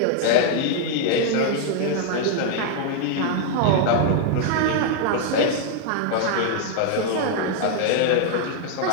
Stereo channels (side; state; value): both; different; correlation 0.00